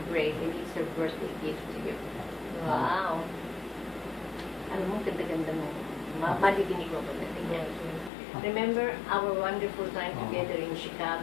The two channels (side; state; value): right; drops out; at 8.1 s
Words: break and it's her birthday gift to you. Wow! Alam mo, ganda-ganda mo. Madidinig mo ba natin? Remember our wonderful time together in